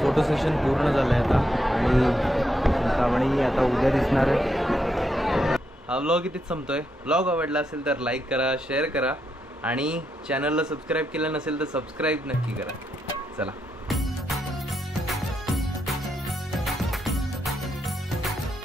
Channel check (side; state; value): both; normal; correlation 0.81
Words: सेशन पूर्ण झालं आहे आता आणि चिंतामणी आता उद्या दिसणार आहे. हा व्लॉग इथेच संपतोय. व्लॉग आवडला असेल तर लाईक करा, शेअर करा आणि चॅनलला सबस्क्राईब केलं नसेल तर सबस्क्राईब नक्की करा. चला.